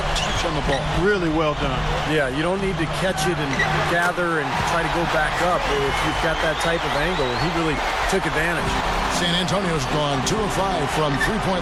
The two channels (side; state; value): both; identical; correlation 1.00